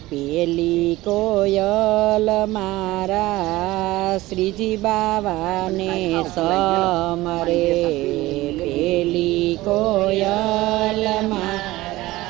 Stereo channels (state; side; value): quieter; left; 18.3 dB